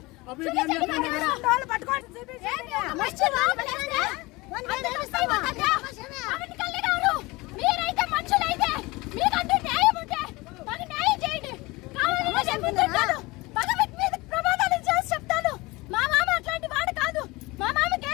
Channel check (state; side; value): quieter; right; 22.6 dB